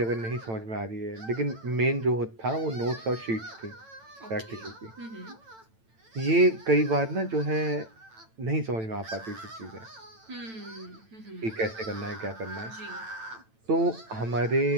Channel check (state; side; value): late; left; 9.0 ms